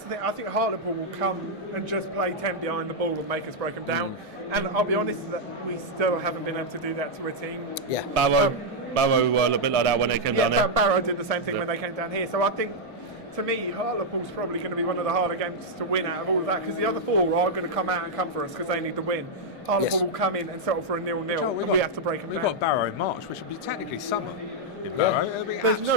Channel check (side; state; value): both; normal; correlation -0.03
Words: the thing. I think Hartlepool will come and just play 10 behind the ball and make us break them down. And I'll be honest that we still haven't been able to do that to a team. Yeah. Barrow were a bit like that when they came down there. Barrow did the same thing when they came down here. So I think, to me, Hartlepool's probably going to be one of the harder games to win out of all of that, because the other 4 are going to come out and come for us because they need to win. Hartlepool will come in and settle for a 0-0, and we have to break them down. We've got Barrow in March, which would be technically summer. Barrow. There's